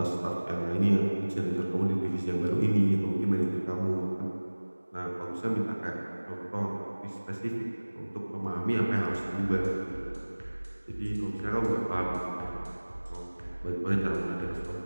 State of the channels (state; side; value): inverted; both; correlation -1.00